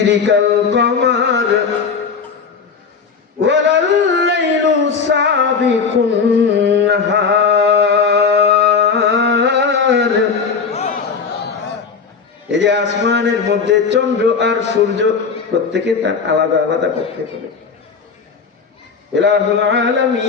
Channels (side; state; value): right; quieter; 5.6 dB